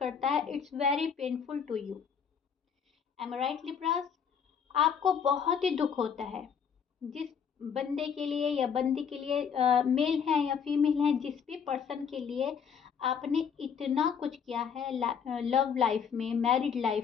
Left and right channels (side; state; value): right; quieter; 7.1 dB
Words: है। It's very painful to you. Am I right Libras? आपको बहुत ही दुख होता है जिस बंदे के लिए या बंदी के लिए, मेल है या फीमेल है, जिस भी पर्सन के लिए आपने इतना कुछ किया है लव लाइफ में, मैरिड